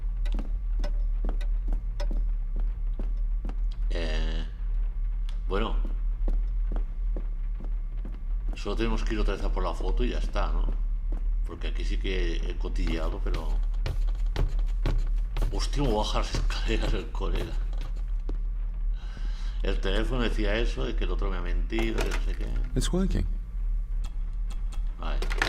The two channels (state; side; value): identical; both; correlation 1.00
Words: Bueno, solo tenemos que ir otra vez a por la foto y ya está, ¿no? Porque aquí sí que he cotilleado, pero... Hostia, me baja las escaleras el colega. El teléfono decía eso, de que el otro me ha mentido, que no sé qué. It's working. Vale,